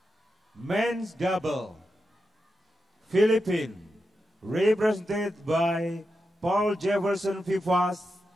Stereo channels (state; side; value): normal; both; correlation 0.88